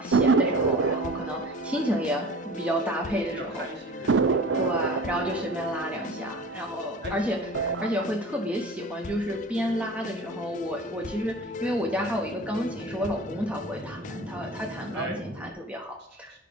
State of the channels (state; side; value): normal; both; correlation 0.39